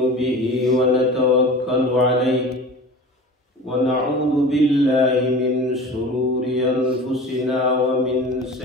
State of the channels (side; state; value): both; normal; correlation 0.36